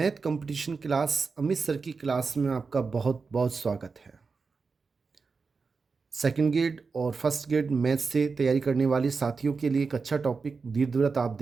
competition class Amit sir की class में आपका बहुत बहुत स्वागत है। सेकंड ग्रेड और फर्स्ट ग्रेड मैथ से तैयारी करने वाले साथियों के लिए एक अच्छा टॉपिक दीर्घवृत्त आप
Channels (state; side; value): quieter; left; 4.7 dB